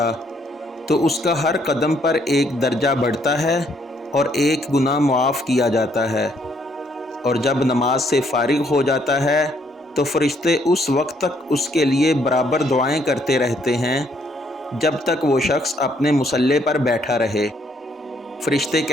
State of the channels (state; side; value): normal; both; correlation 0.69